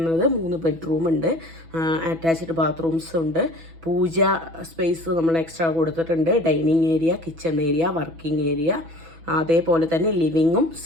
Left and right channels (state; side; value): late; left; 6.1 ms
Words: 3 ബെഡ്റൂം ഉണ്ട്, അറ്റാച്ച്ഡ് ബാത്റൂംസ് ഉണ്ട്, പൂജ സ്പേസ് നമ്മൾ എക്സ്ട്രാ കൊടുത്തിട്ടുണ്ട്, dining area, kitchen area, working area, അതേപോലെ തന്നെ ലിവിങ്ങും